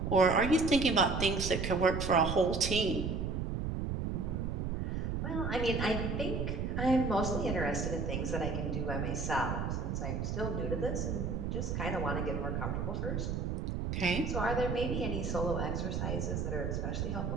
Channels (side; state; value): right; noise; rumble, 1 dB below the sound